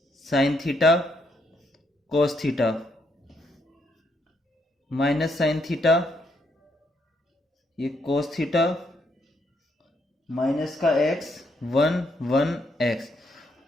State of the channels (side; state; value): both; normal; correlation 0.75